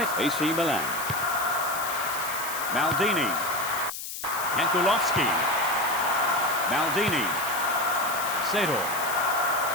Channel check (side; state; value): left; noise; hiss, 8 dB below the sound